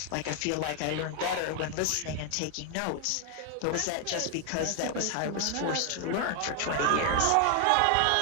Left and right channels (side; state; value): both; different; correlation 0.00